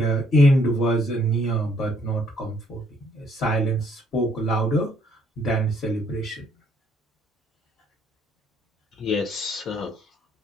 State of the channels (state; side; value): normal; both; correlation 0.66